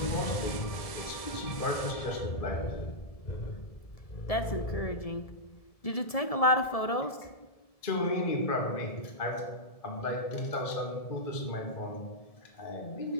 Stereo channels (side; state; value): right; late; 1.7 ms